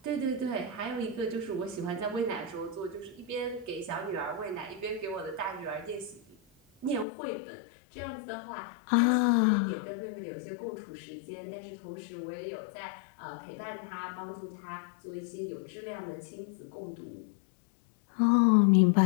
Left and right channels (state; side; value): drops out; right; at 7.1 s